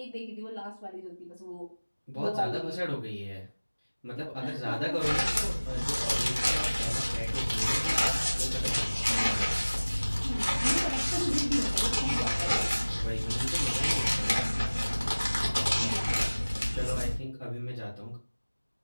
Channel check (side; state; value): both; inverted; correlation -1.00